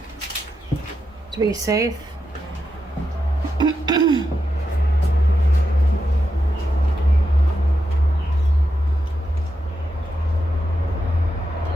To be safe.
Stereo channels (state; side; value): normal; both; correlation 0.86